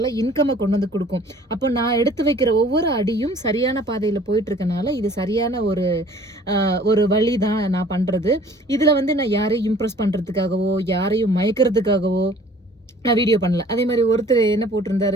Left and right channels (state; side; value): normal; both; correlation 0.52